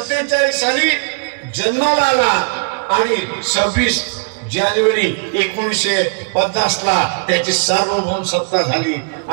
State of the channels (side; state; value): left; quieter; 38.8 dB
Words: साली जन्माला आला आणि 26 जानेवारी 1950 ला त्याची सार्वभौम सत्ता झाली